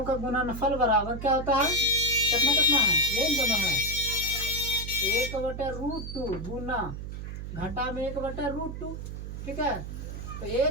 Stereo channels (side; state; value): right; noise; hum, 8 dB below the sound